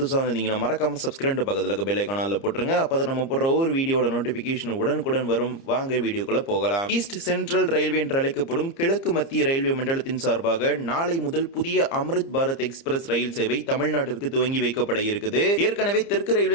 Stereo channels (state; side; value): late; right; 30 ms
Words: வந்தீங்கன்னா மறக்காம சப்ஸ்கிரைப் பக்கத்தில் பெல் ஐகான்ல போட்டுருங்க. அப்பதான் நம்ம போடுற ஒவ்வொரு வீடியோட நோட்டிபிகேஷன் உடனுக்குடன் வரும். வாங்க வீடியோக்குள்ள போகலாம். ஈஸ்ட் சென்ட்ரல் ரயில்வே என்று அழைக்கப்படும் கிழக்கு மத்திய ரயில்வே மண்டலத்தின் சார்பாக நாளை முதல் புதிய அம்ரித் பாரத் எக்ஸ்பிரஸ் ரயில் சேவை தமிழ்நாட்டிற்கு துவங்கி வைக்கப்பட இருக்குது. ஏற்கனவே தெற்கு